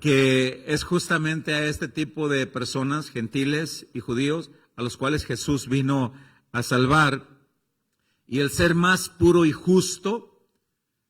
es justamente a este tipo de personas, gentiles y judíos, a los cuales Jesús vino a salvar. Y el ser más puro y justo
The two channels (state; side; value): identical; both; correlation 1.00